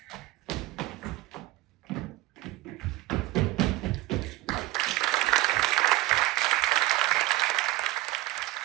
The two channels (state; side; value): quieter; left; 18.3 dB